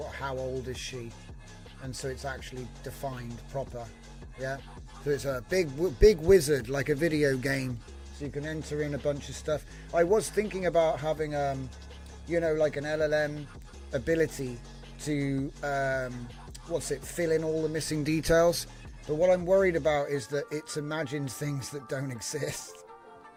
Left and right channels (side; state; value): both; identical; correlation 1.00